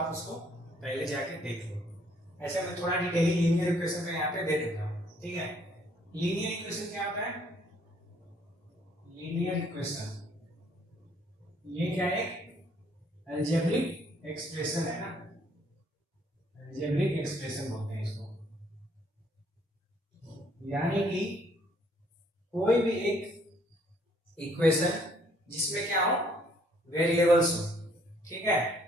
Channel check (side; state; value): both; normal; correlation 0.64